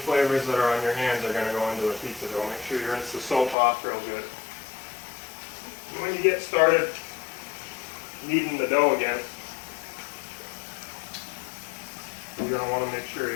that are on your hands are going to go into the pizza dough. Make sure you rinse the soap off real good. And when you get started kneading the dough again, you're going to want to make sure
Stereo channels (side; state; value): right; drops out; at 3.6 s